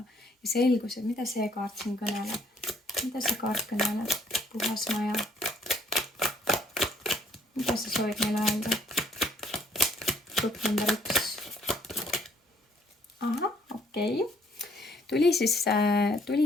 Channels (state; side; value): normal; both; correlation 0.64